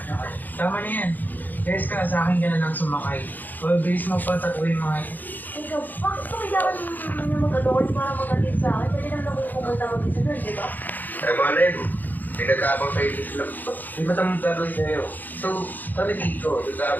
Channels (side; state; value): right; late; 0.085 ms